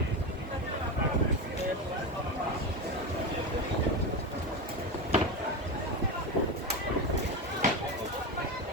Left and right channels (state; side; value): normal; both; correlation 0.18